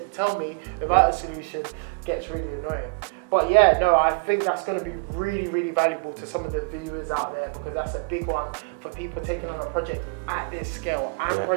to tell me without a solution gets really annoying. But yeah, no, I think that's going to be really, really valuable to some of the viewers out there, because that's a big one for people taking on a project at this scale and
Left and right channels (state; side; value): quieter; left; 36.7 dB